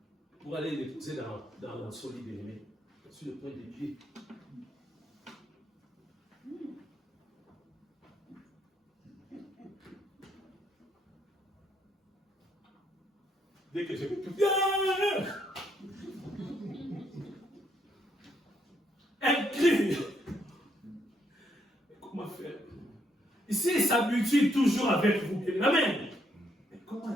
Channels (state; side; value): normal; both; correlation 0.74